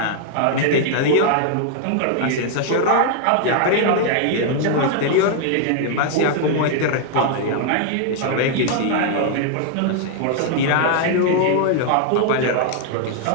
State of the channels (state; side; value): different; both; correlation 0.00